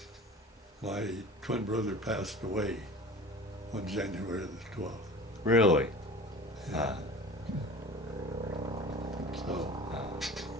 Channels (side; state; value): both; normal; correlation 0.39